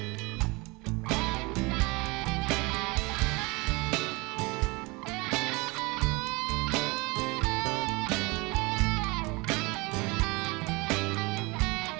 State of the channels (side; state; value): left; quieter; 25.5 dB